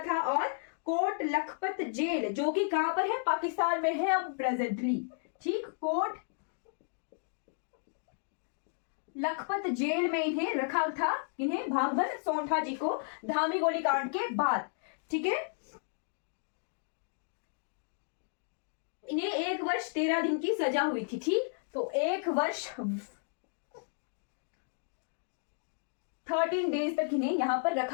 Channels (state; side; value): silent; right; digital silence